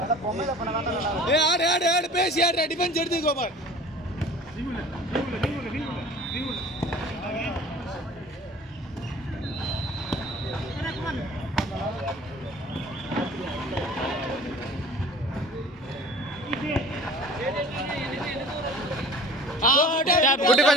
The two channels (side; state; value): both; normal; correlation 0.45